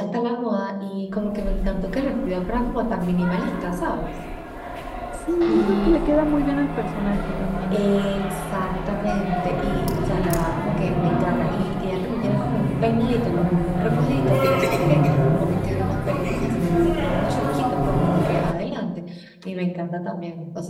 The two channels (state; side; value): identical; both; correlation 1.00